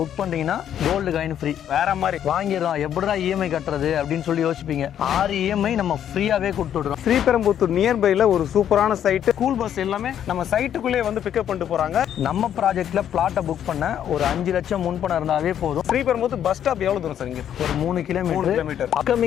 பண்ணீங்கன்னா gold coin free. வேற மாதிரி வாங்கிடலாம், எப்படிடா இஎம்ஐ கட்டுறது அப்படின்னு சொல்லி யோசிப்பீங்க. 6 இஎம்ஐ நம்ம ஃப்ரீயாவே கொடுத்து விடுறோம். ஸ்ரீபெரும்புத்தூர் நியர்பைல ஒரு சூப்பரான சைட், ஸ்கூல் பஸ் எல்லாமே நம்ம சைட்டுக்குள்ளே வந்து பிக்கப் பண்ணிட்டு போறாங்க. நம்ம ப்ராஜெக்ட்ல பிளாட்டை புக் பண்ண ஒரு 5 லட்சம் முன்பணம் இருந்தாவே போதும். ஸ்ரீபெரும்புத்தூர் பஸ் ஸ்டாப் எவ்வளவு தூரம் சார்? இங்க ஒரு 3 கிலோமீட்டர்.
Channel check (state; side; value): quieter; right; 9.9 dB